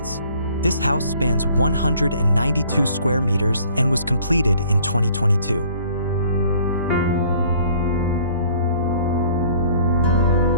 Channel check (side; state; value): both; inverted; correlation -0.56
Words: This house spans 192 square meters and was completed in 2022.